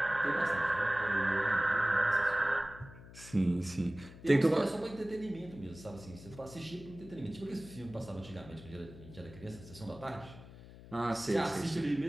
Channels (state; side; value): noise; left; hum, 17 dB below the sound